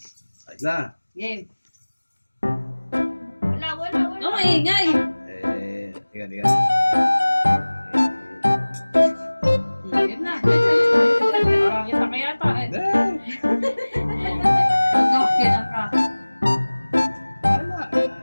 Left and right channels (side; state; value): both; inverted; correlation -1.00